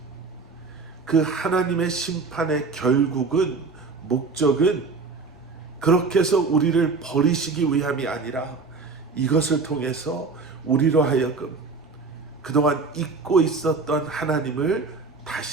그 하나님의 심판의 결국은, 목적은 그렇게 해서 우리를 버리시기 위함이 아니라 이것을 통해서 우리로 하여금 그동안 잊고 있었던 하나님을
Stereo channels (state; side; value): quieter; left; 4.3 dB